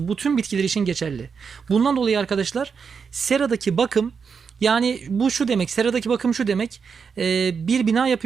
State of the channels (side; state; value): left; quieter; 6.0 dB